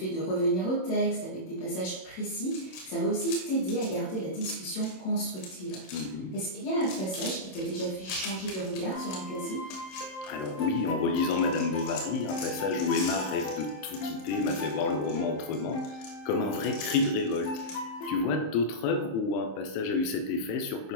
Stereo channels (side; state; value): right; late; 27 ms